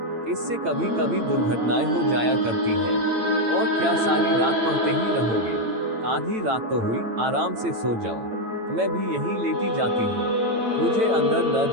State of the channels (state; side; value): late; left; 8.9 ms